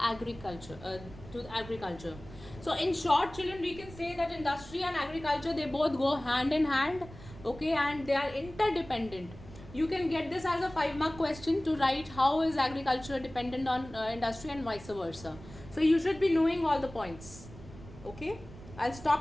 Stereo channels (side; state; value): right; noise; rumble, 16 dB below the sound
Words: So in short, children, we can say that industry and agriculture, they both go hand in hand, okay, and they are interdependent. You can get this as a 5-mark question to write how is agriculture dependent on industry and vice versa. So you should be knowing all the points. Okay, I'll